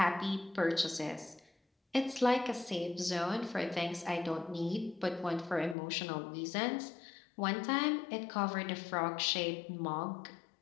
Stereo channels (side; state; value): right; drops out; at 5.8 s